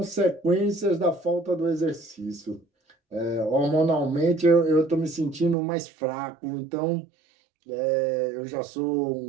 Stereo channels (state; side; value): drops out; left; at 5.6 s